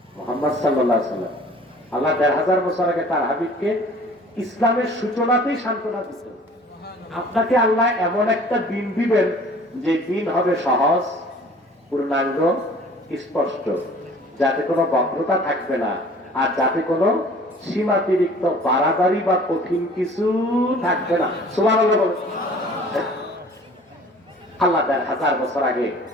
মুহাম্মদ সাল্লাল্লাহু আলাইহি ওয়াসাল্লাম আল্লাহ ১৫০০ বছর আগে তার হাবিবকে ইসলামের সূচনাতেই সান্ত্বনা দিয়েছেন, আপনাকে আল্লাহ এমন একটা দিন দিবেন যে দিন হবে সহজ পূর্ণাঙ্গ স্পষ্ট, যাতে কোনো বক্রতা থাকবে না, আর যাতে কোনো সীমাতিরিক্ত বাড়াবাড়ি বা কঠিন কিছু থাকবে না। সুবহানাল্লাহ বলেন। আল্লাহ ১৫০০ বছর আগে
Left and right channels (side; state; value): both; normal; correlation 0.50